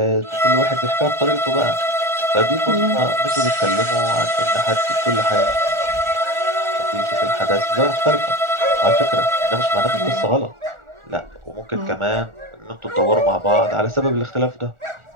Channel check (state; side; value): late; left; 1.4 ms